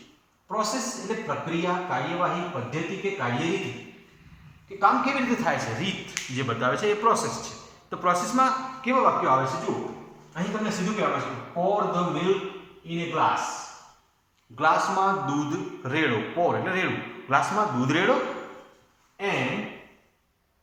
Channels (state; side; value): identical; both; correlation 1.00